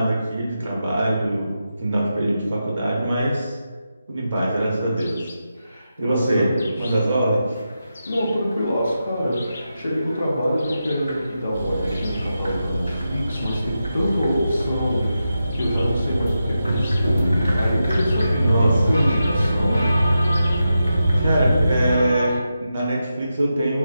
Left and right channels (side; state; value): both; inverted; correlation -0.88